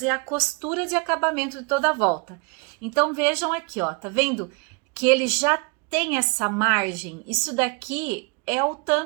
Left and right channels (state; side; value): quieter; left; 32.4 dB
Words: a costura de acabamento de toda a volta. Então, vejam aqui, ó, tá vendo? Que ele já tem essa margem. Isso daqui é o